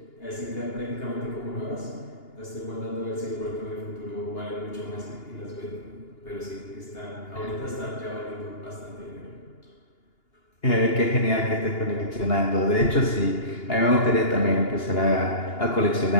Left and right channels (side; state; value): right; late; 2.8 ms